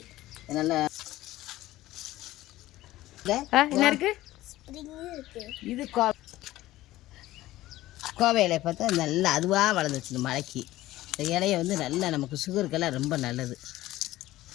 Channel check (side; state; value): right; quieter; 16.1 dB